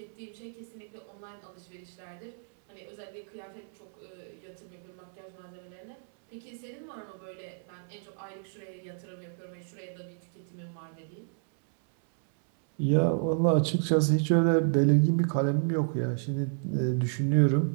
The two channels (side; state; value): left; silent; 57 dB below the other